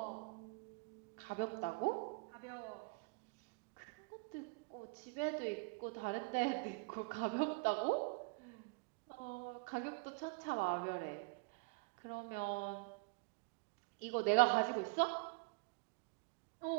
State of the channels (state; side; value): quieter; left; 30.4 dB